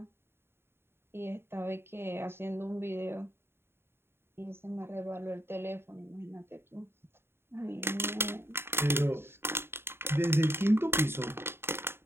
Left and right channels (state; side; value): late; left; 0.11 ms